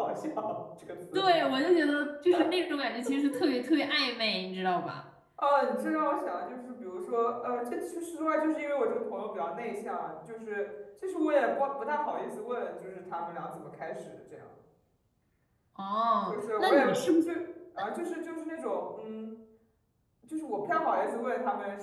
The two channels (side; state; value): both; identical; correlation 1.00